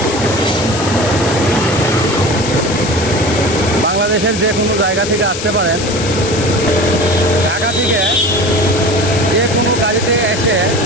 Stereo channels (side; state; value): left; noise; hiss, 7 dB below the sound